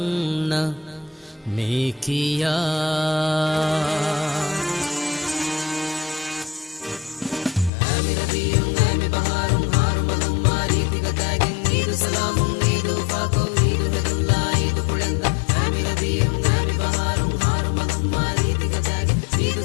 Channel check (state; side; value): drops out; right; at 7.7 s